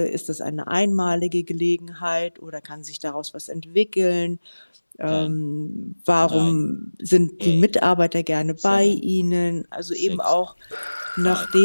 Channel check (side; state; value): both; inverted; correlation -1.00